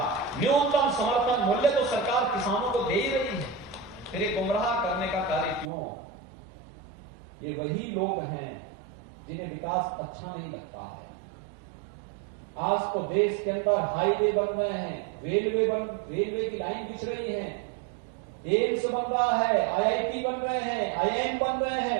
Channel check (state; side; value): drops out; left; at 5.7 s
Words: न्यूनतम समर्थन मूल्य तो सरकार किसानों को दे ही रही है, फिर ये गुमराह करने का कार्य क्यों? ये वही लोग हैं जिन्हें विकास अच्छा नहीं लगता है। आज तो देश के अंदर हाईवे बन रहे हैं, रेलवे की लाइन बिछ रही है, एम्स बन रहा है, आईआईटी बन रहे हैं, आईआईएम बन रहे